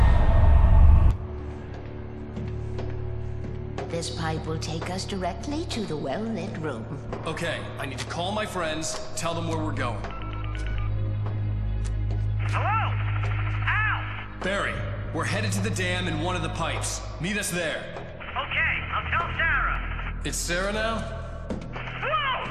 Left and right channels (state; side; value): identical; both; correlation 1.00